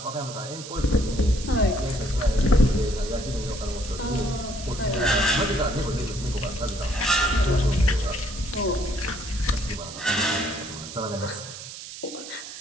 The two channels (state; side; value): noise; right; hiss, 12 dB below the sound